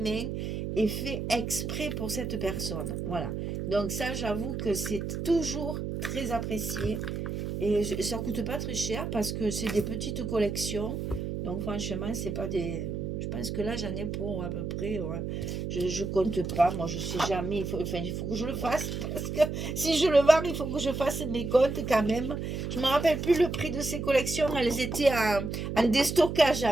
et fait exprès pour cette personne. Voilà. Donc ça, j'avoue que c'est toujours très apprécié. Et ça coûte pas très cher parce que c'est des petites collections. Donc franchement, c'est pas des... Je pense que là, j'en ai pour à peu près... Ouais. Je compte pas, moi je sais jamais. Il faut que je le fasse. Parce que si je le vends, il faut que je fasse mes comptes quand même. Je me rappelle plus le prix de ces collections. Elles étaient en déstockage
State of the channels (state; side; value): noise; right; hum, 4 dB below the sound